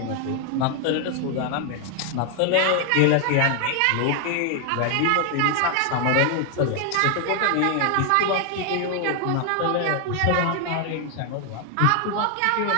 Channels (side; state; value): both; different; correlation 0.00